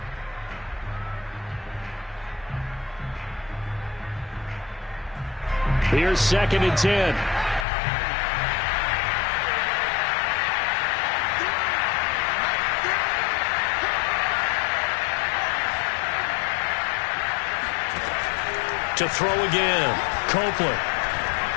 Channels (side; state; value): right; drops out; at 7.7 s